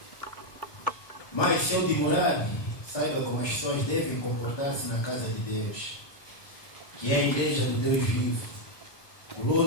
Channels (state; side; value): late; right; 1.3 ms